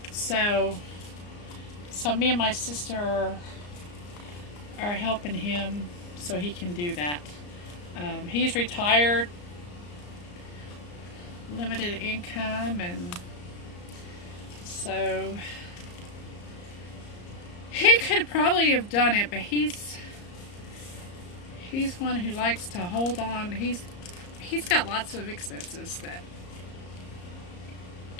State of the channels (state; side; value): late; right; 34 ms